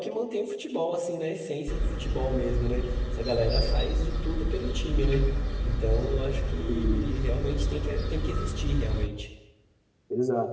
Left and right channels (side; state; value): both; identical; correlation 1.00